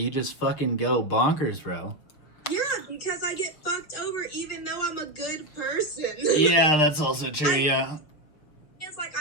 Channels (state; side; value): late; right; 6.3 ms